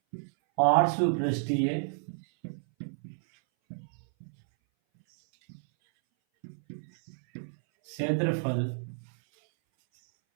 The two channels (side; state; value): left; silent; 58 dB below the other